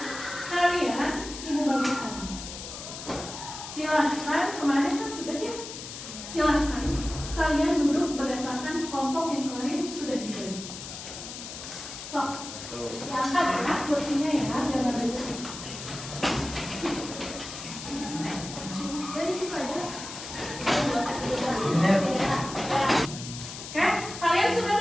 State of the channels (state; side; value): noise; left; hiss, 10 dB below the sound